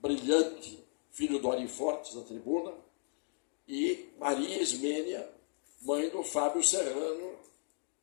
filho do Ari Fortes, da Tribuna, e Maria Ismênia, mãe do Fábio Serrano,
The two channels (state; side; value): silent; right; 54 dB below the other